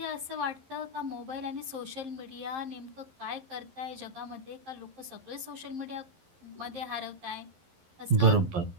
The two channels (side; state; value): left; late; 11 ms